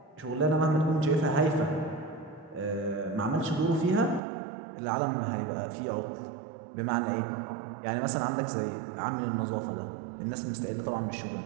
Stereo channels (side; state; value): left; drops out; at 4.2 s